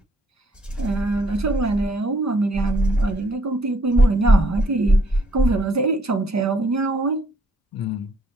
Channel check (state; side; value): normal; both; correlation 0.67